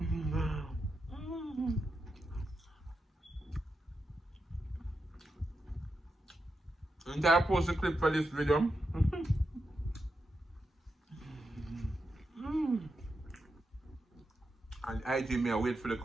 And I post a clip for this video. And IG me, I wait for the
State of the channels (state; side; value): normal; both; correlation 0.87